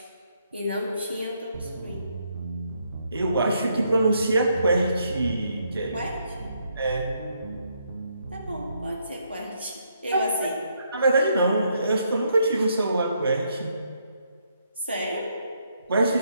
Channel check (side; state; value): both; inverted; correlation -0.75